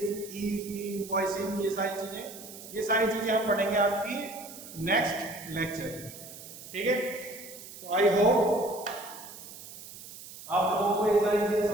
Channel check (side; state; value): right; noise; hiss, 15 dB below the sound